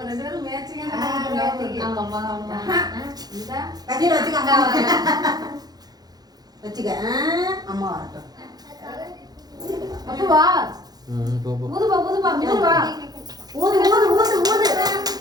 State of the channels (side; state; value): left; late; 0.19 ms